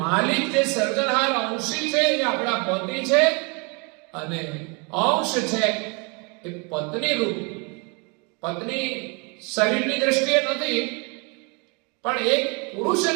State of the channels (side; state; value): left; quieter; 31.8 dB